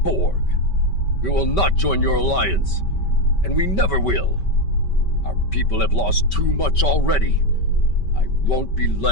We will not join your alliance, and we never will. Our people have lost too much already. I won't be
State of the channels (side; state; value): right; late; 5.2 ms